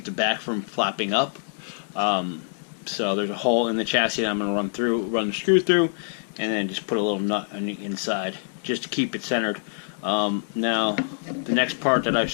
the back from flapping up. So there's a hole in the chassis that I'm going to run the screw through, and then just put a little nut on the inside just to keep it centered. Now the next part that I've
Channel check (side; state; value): right; silent; digital silence